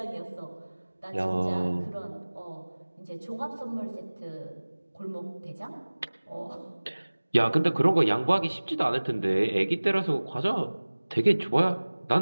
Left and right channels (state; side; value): inverted; both; correlation -1.00